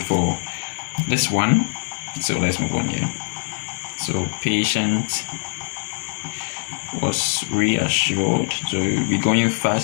for this one, so let's move on here. So patient was reassured. So we're going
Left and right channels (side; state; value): right; silent; 60 dB below the other